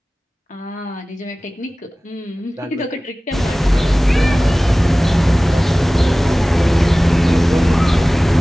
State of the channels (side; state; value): both; normal; correlation 0.98